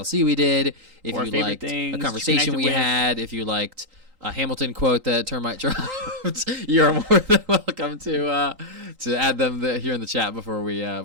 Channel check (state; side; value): late; left; 3.8 ms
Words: we did, if or you liked things, a conversation we had, if you liked a Hamilton quote that Termite dropped, you're more than welcome to add them here in the chat before we